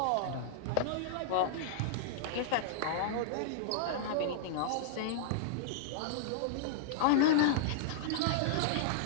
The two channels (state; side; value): different; both; correlation -0.01